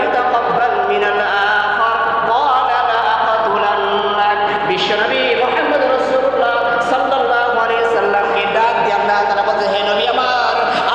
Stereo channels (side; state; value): right; noise; hum, 23 dB below the sound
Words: ইউতাকাব্বাল মিনাল আখার ক্বালা লা আকাতুলান্নাক। বিশ্বনবী মুহাম্মদ রাসূলুল্লাহ সাল্লাল্লাহু আলাইহি সাল্লামকে ডাক দিয়ে আল্লাহ তাআলা বলতে, হে নবী আমার,